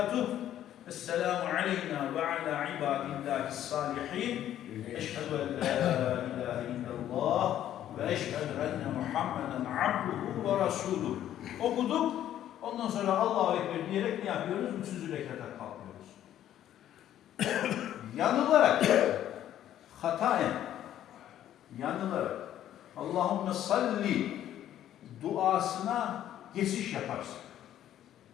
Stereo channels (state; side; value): quieter; right; 11.6 dB